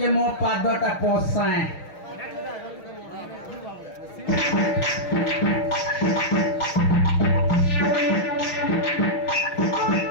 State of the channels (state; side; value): late; right; 6.4 ms